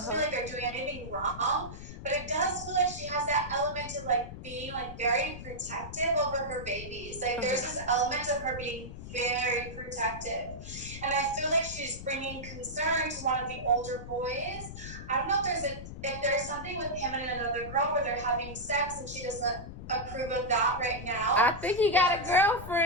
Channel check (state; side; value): noise; left; rumble, 11 dB below the sound